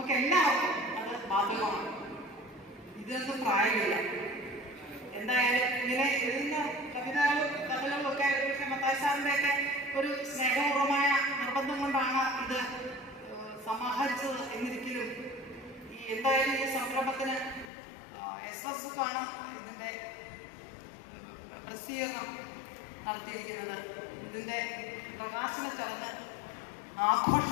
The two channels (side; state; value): right; drops out; at 17.7 s